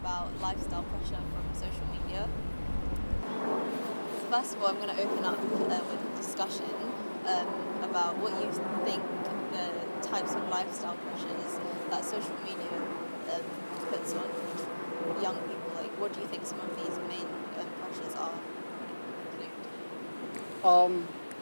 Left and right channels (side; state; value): both; inverted; correlation -1.00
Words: lifestyle pressure from social media. First of all, I'm going to open up with a discussion about what you think the types of lifestyle pressures that social media um, puts on young people. Like, what do you think some of these main pressures are? Include? Um,